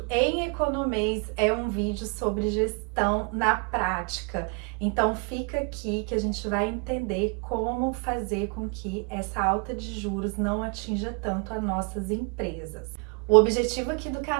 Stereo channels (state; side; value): quieter; left; 35.3 dB